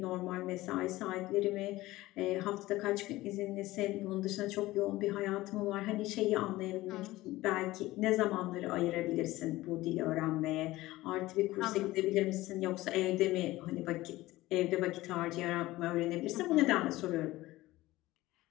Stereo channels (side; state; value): right; quieter; 17.9 dB